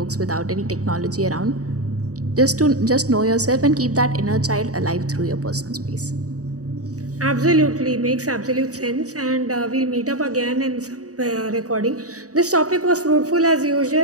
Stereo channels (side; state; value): left; late; 0.66 ms